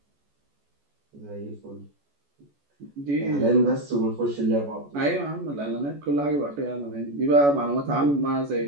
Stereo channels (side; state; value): left; late; 14 ms